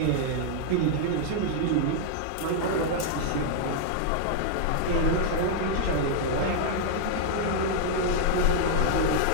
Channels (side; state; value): both; different; correlation -0.01